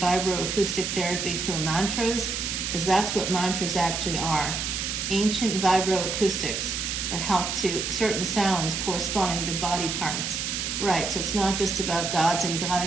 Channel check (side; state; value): right; noise; hiss, 2 dB below the sound